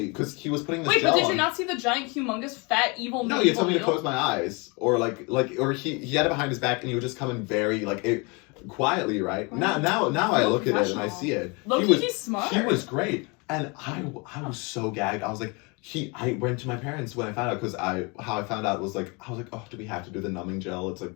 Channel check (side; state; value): right; quieter; 29.8 dB